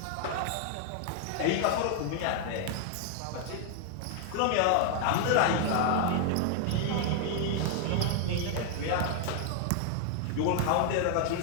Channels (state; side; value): different; both; correlation 0.00